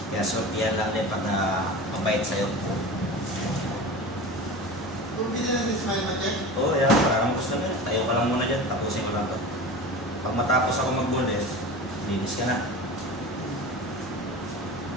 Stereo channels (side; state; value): both; normal; correlation 0.32